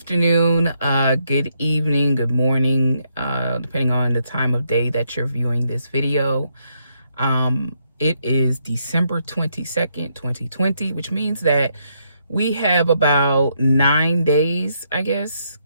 good evening, good morning, depending on the time of day that you're viewing this video. It is December 22nd, 2020, which means that we have about 9 days, I guess,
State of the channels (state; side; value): inverted; both; correlation -0.76